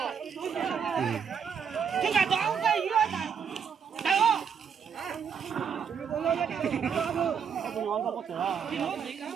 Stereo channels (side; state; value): left; quieter; 7.1 dB